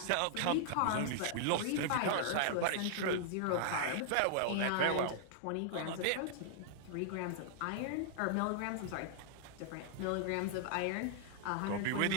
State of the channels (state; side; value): different; both; correlation -0.01